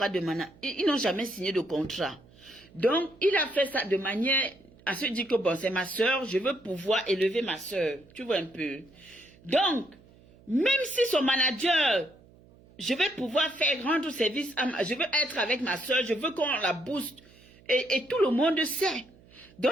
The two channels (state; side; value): noise; right; hum, 26 dB below the sound